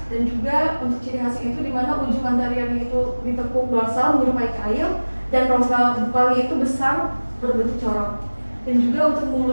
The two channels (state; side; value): inverted; both; correlation -1.00